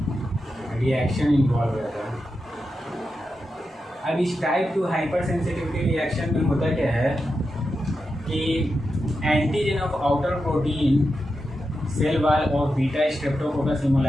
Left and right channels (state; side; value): normal; both; correlation 0.89